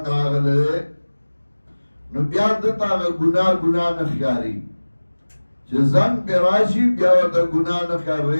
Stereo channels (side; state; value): both; inverted; correlation -1.00